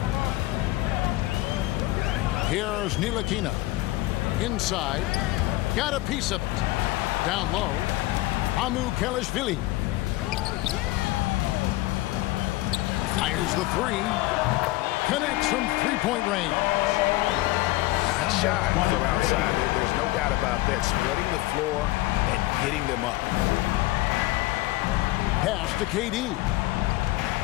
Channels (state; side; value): quieter; right; 18.5 dB